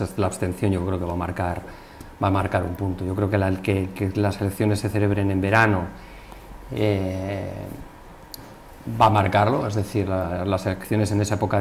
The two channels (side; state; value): both; identical; correlation 1.00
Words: abstención yo creo que va a marcar un punto. Yo creo que las elecciones se celebren en verano va a marcarlo, es decir, las elecciones en esa época